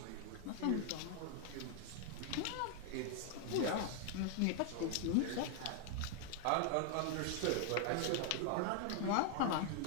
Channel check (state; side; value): different; both; correlation 0.00